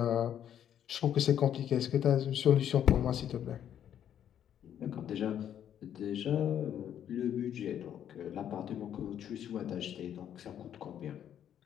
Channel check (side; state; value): right; quieter; 9.9 dB